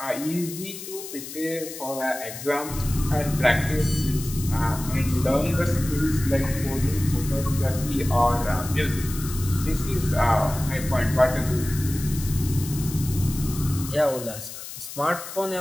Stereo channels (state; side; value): noise; left; hiss, 11 dB below the sound